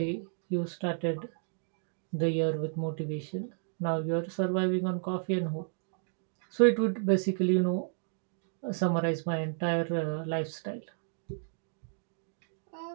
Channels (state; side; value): silent; left; digital silence